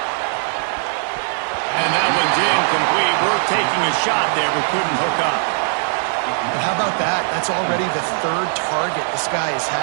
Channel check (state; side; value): silent; left; digital silence